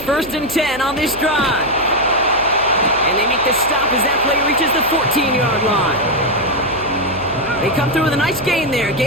and 10 on this drive. And they make the stop as that play reaches the 14-yard line. They come through with a nice gain there.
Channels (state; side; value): noise; right; hum, 17 dB below the sound